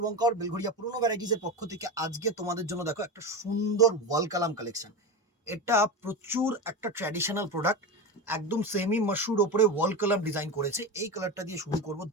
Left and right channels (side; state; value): both; normal; correlation 0.21